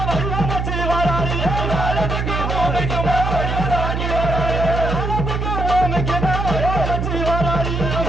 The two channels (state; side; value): noise; right; hum, 2 dB below the sound